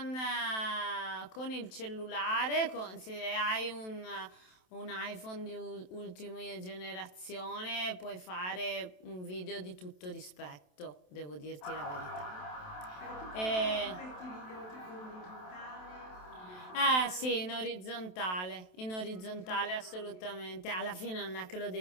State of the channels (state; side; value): late; right; 27 ms